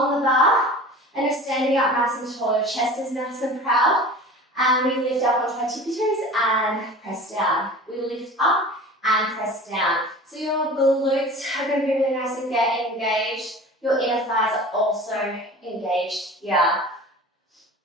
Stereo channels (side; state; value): both; normal; correlation 0.39